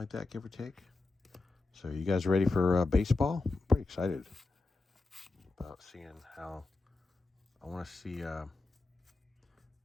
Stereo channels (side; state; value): right; quieter; 3.4 dB